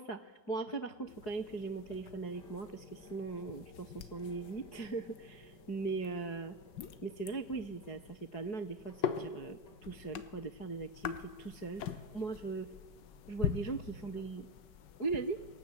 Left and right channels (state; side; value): late; right; 5.4 ms